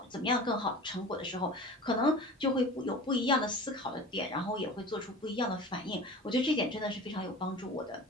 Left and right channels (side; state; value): both; normal; correlation 0.37